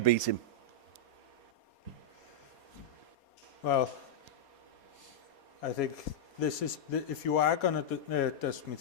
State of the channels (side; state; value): right; late; 4.2 ms